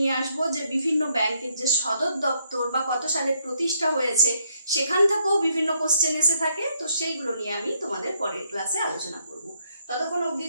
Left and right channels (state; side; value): inverted; both; correlation -0.73